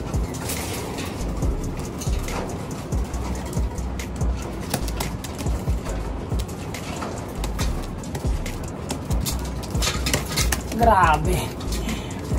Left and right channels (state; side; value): identical; both; correlation 1.00